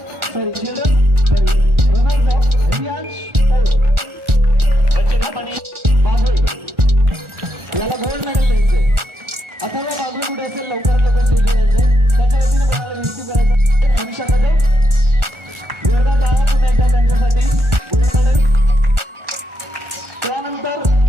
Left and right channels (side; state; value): left; late; 1.4 ms